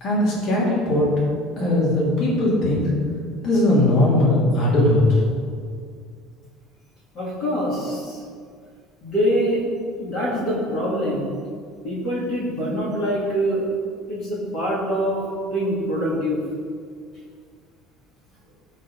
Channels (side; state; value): both; normal; correlation 0.43